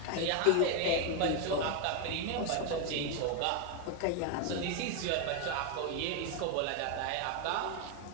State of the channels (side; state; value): both; different; correlation 0.01